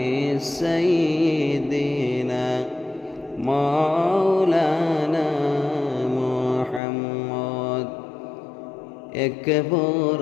সাইয়্যিদিনা মাওলানা মুহাম্মদ। এক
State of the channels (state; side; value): drops out; right; at 6.8 s